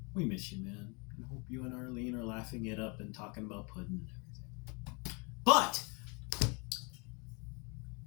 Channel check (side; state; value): right; quieter; 31.6 dB